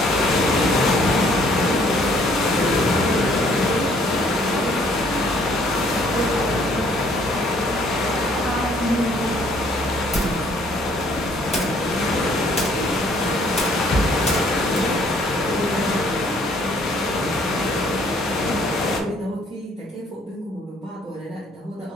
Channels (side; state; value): both; normal; correlation 0.62